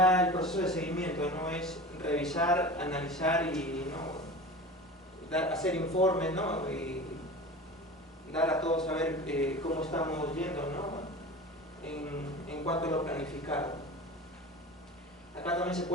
el proceso de seguimiento, ¿no? Es revisar, analizar y, ¿no? Hacer informes, ¿no? Y dar a todos a ver cómo estamos yendo, ¿no? En cuanto a lo planificado. Acá también se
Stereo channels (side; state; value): both; normal; correlation 0.34